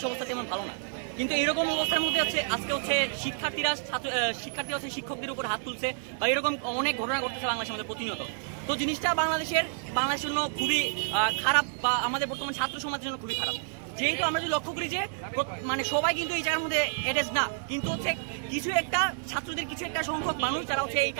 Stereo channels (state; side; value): silent; left; digital silence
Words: অবস্থা তেমন ভালো না, কিন্তু এরকম অবস্থার মধ্যে হচ্ছে আজকে হচ্ছে শিক্ষার্থীরা হচ্ছে শিক্ষকদের উপর হাত তুলছে বা এরকম অনেক ঘটনা ঘটতেছে বাংলাদেশের মধ্যে প্রতিনিয়ত। তো জিনিসটা বাংলাদেশের জন্য খুবই খারাপ বা আমাদের বর্তমান ছাত্র সমাজের জন্য খুবই খারাপ। যেহেতু আমরা যদি লক্ষ্য করি যে মানে সবাই কিন্তু এই জায়গার মধ্যে এডেজ না, কিন্তু হচ্ছে কিছু একটা ছাত্রদের কিছু একটা সংখ্যক মানুষ যারা হচ্ছে এই